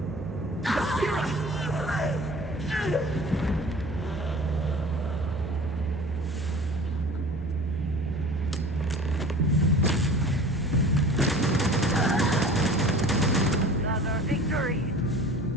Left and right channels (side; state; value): both; normal; correlation 0.42